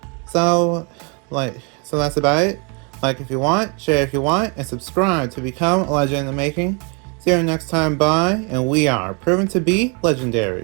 so that's about it. Like if you want, share if you want, and subscribe to become a legend in the making. See you next time, bye, and we are proven to be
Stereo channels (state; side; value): quieter; left; 34.1 dB